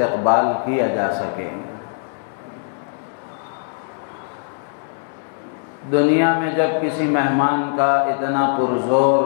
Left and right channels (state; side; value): silent; right; 65 dB below the other